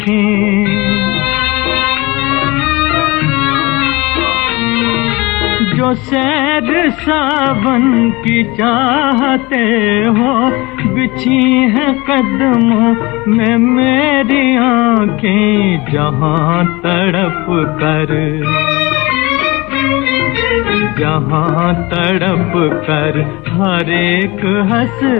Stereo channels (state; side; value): quieter; right; 23.4 dB